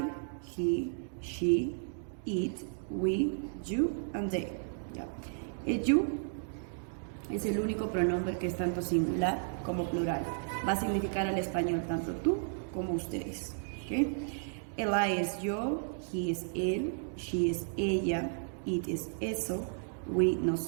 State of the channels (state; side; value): silent; left; digital silence